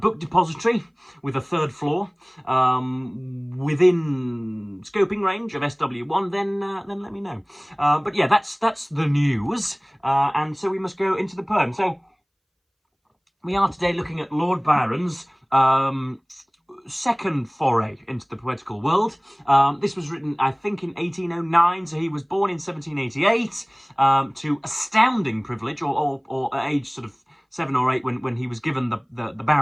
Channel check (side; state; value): both; identical; correlation 1.00